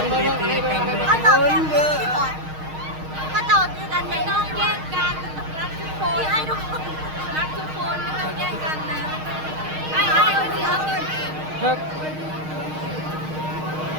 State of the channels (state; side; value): late; left; 6.4 ms